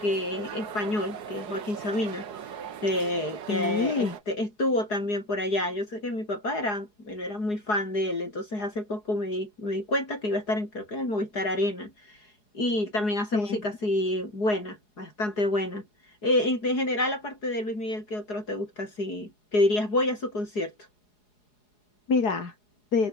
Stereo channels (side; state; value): right; late; 4.8 ms